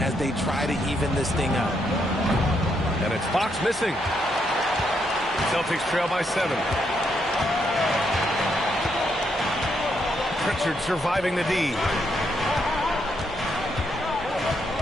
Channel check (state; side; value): normal; both; correlation 0.77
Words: they try to even this thing up. And it's Fox missing. Celtics trail by 7. Pritchard surviving the D.